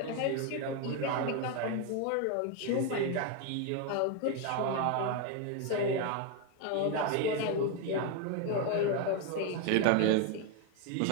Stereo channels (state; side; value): different; both; correlation 0.01